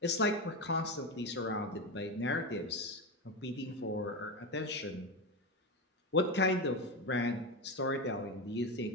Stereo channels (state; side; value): normal; both; correlation 0.16